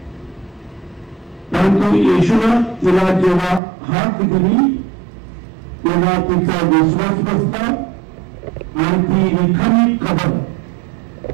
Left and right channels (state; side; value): drops out; left; at 3.6 s